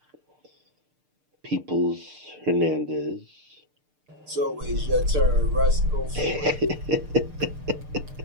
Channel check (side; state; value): left; late; 6.7 ms